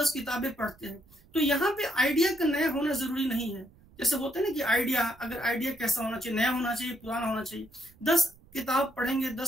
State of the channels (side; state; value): right; noise; rumble, 27 dB below the sound